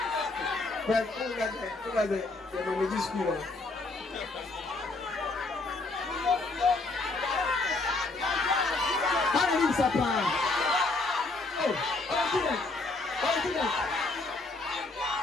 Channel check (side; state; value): right; quieter; 3.3 dB